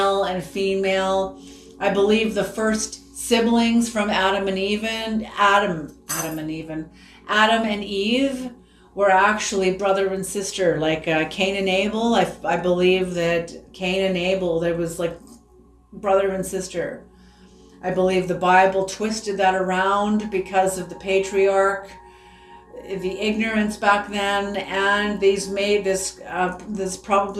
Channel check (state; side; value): identical; both; correlation 1.00